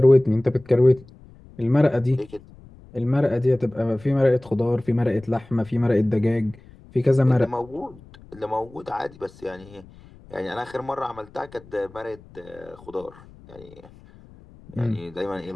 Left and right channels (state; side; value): noise; left; rumble, 23 dB below the sound